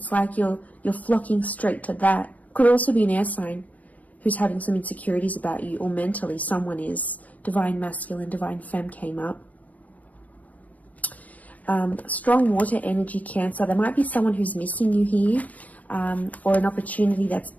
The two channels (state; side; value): late; right; 0.075 ms